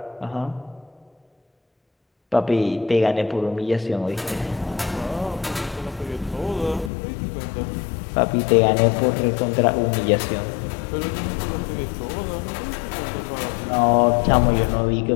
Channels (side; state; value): right; drops out; at 6.9 s